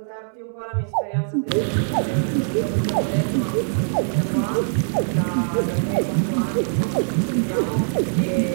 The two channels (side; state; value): left; silent; 64 dB below the other